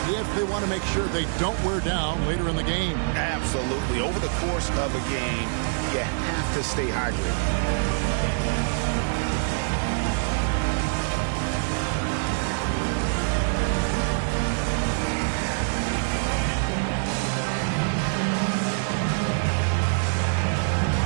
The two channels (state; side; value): silent; left; digital silence